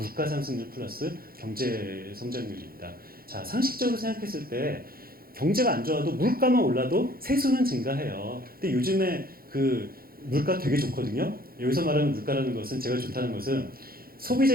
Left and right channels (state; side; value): late; left; 0.43 ms